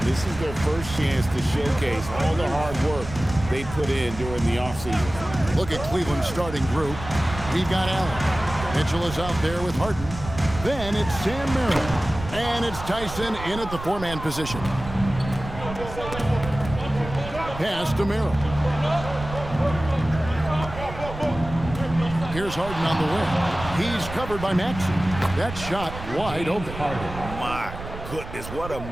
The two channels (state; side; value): noise; right; rumble, 10 dB below the sound